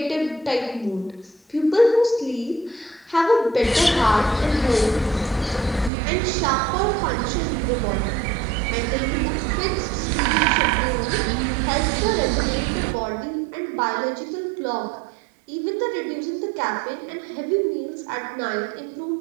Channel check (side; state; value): left; drops out; at 5.9 s